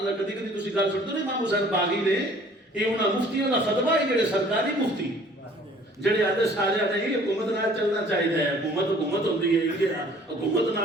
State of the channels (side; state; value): both; normal; correlation 0.54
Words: کدی کدی تسی گل سنتے ہو امام حسین باغی نے, یہ انہاں مفتیوں دا فتویٰ ہے جڑے سرکاری مفتی جڑے آدھے سارے نہیں حکومت نال چلنا چاہیے ہے, حکومت ہوندی ہے, یہ حکومت